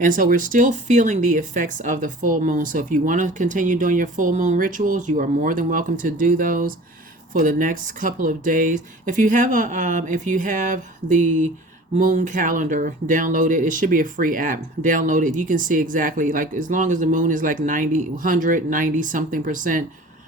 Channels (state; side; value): normal; both; correlation 0.43